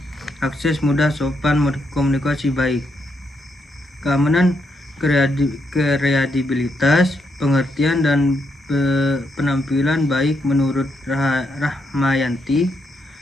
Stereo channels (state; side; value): normal; both; correlation 0.79